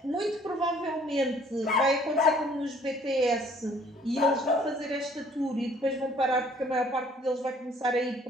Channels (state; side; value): normal; both; correlation 0.58